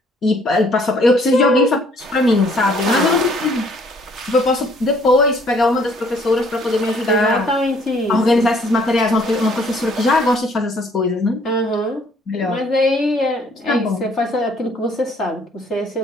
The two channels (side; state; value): both; normal; correlation 0.62